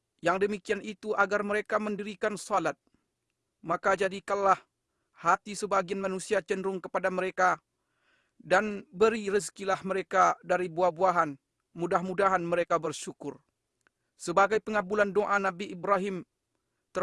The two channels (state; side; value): identical; both; correlation 1.00